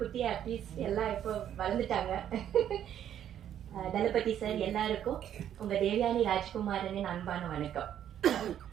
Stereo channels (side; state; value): left; quieter; 10.3 dB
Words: artist எல்லாம் இப்போ வளர்ந்துட்டாங்க. தளபதி சார் எல்லாருக்கும் உங்க தேவயானி ராஜ்குமாரனின் அன்பான வணக்கம்.